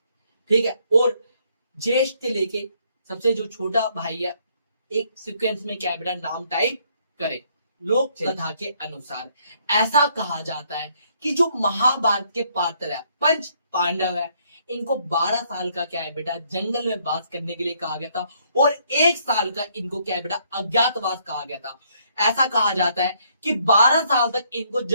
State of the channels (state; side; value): inverted; both; correlation -0.68